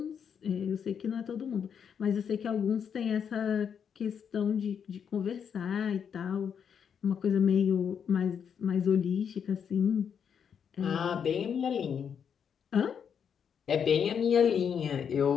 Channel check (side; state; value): right; quieter; 7.5 dB